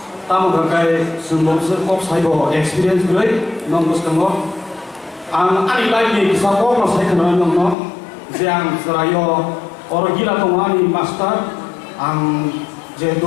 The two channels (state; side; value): drops out; right; at 7.8 s